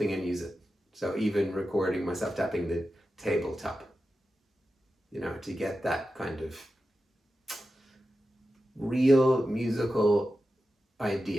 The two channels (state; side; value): normal; both; correlation 0.92